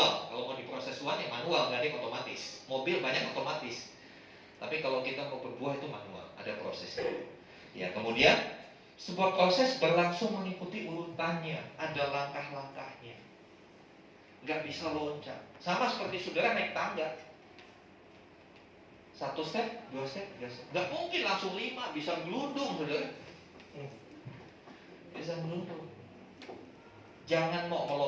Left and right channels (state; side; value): identical; both; correlation 1.00